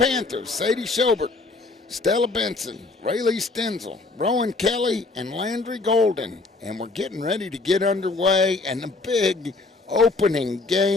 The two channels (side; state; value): right; quieter; 3.6 dB